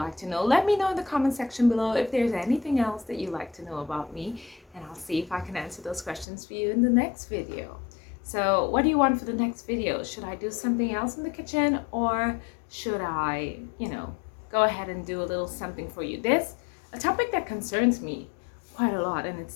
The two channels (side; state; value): right; drops out; at 6.2 s